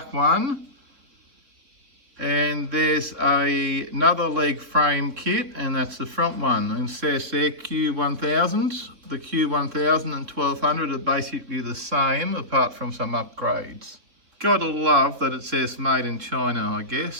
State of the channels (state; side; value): late; left; 3.4 ms